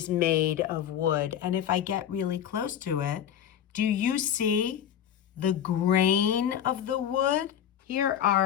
made of wood. And if I get really close to it, do you see the grain of the wood? Here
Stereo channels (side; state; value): right; quieter; 9.7 dB